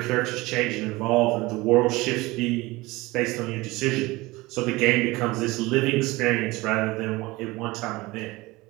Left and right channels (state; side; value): quieter; left; 21.2 dB